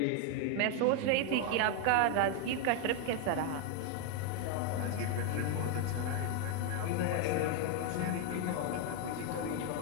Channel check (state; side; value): different; both; correlation 0.01